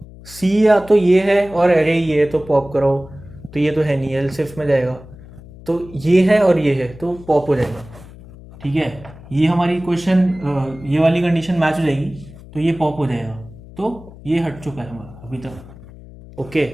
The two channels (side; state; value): left; noise; hum, 19 dB below the sound